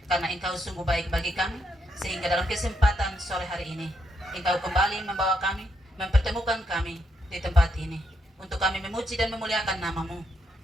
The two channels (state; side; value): normal; both; correlation 0.79